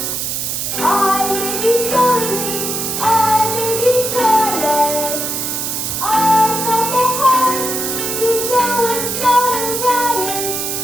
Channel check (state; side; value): noise; right; hiss, 2 dB below the sound